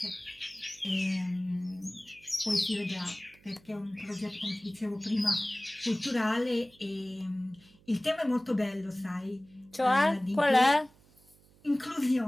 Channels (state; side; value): noise; right; hum, 28 dB below the sound